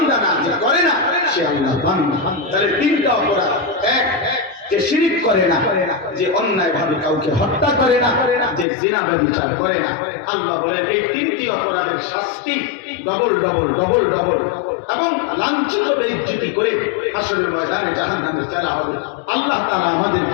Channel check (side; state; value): right; drops out; at 8.7 s